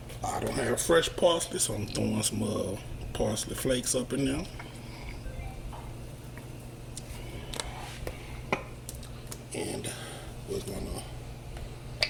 I don't have fresh parsley, so I'm throwing some parsley flakes up in there. And we're gonna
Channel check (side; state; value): both; identical; correlation 1.00